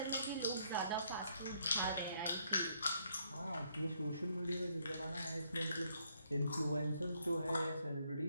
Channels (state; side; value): inverted; both; correlation -0.71